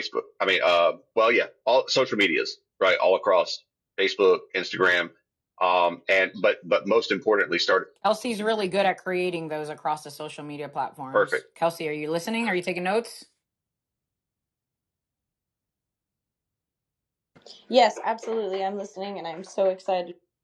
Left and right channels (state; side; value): identical; both; correlation 1.00